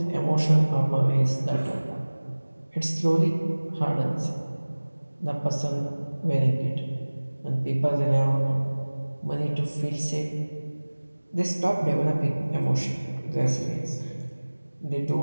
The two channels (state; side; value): inverted; both; correlation -1.00